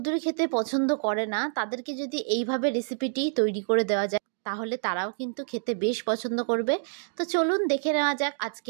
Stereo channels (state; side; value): silent; left; digital silence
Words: খেতে পছন্দ করে না তাদেরকে যদি এইভাবে রেসিপিটি তৈরি করে দেওয়া যায় তাহলে তারাও কিন্তু খেতে বেশ পছন্দ করবে। তো চলুন দেখে নেওয়া যাক